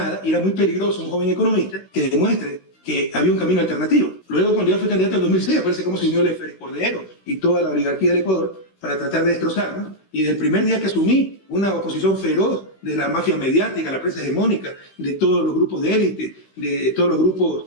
y era muy peligroso un joven economista que demuestre que había un camino alternativo. Luego, cuando yo fui candidato en 2006, aparece cómo se unió el Félix Cordero y toda la oligarquía del Ecuador para tratar de destrozarnos. Y desde el primer día que asumí, una oposición feroz de la mafia mediática, la prensa hegemónica, de todos los grupos de élite, de todos los grupos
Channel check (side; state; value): right; late; 16 ms